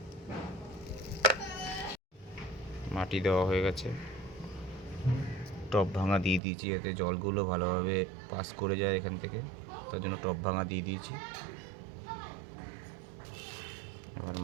মাটি দেওয়া হয়ে গেছে, টব ভাঙা দিয়ে দিয়েছি যাতে জলগুলো ভালোভাবে পাস করে যায় এখান থেকে, তার জন্য টব ভাঙা দিয়ে দিয়েছি। এবার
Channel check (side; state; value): left; drops out; at 6.4 s